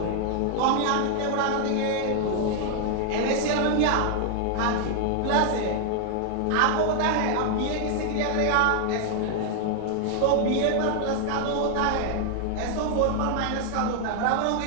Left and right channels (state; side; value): different; both; correlation 0.00